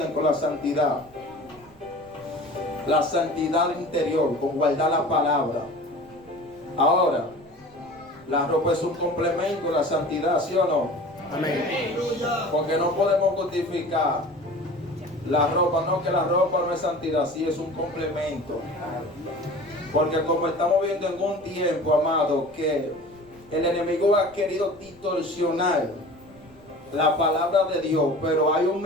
con la santidad. La santidad interior, con guardar la palabra. Ahora, la ropa es un complemento de la santidad, ¿sí o no? Amén. Porque no podemos justificar la ropa, no, que la ropa no es santidad, sí es un complemento. Porque como estamos viendo en un tiempo, amado, que el enemigo ha querido distorsionar la palabra de Dios, pero hay un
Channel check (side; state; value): right; noise; rumble, 27 dB below the sound